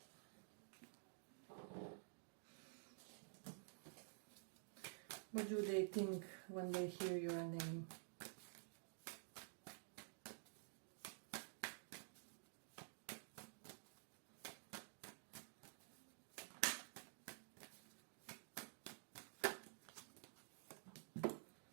What do they think when they hear your name?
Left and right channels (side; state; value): left; silent; digital silence